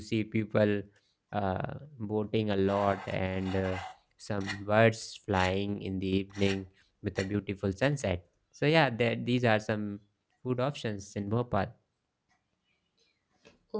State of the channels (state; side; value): identical; both; correlation 1.00